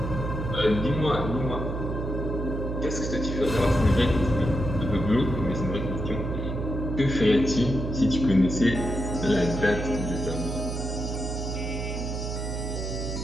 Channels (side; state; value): right; noise; hum, 4 dB below the sound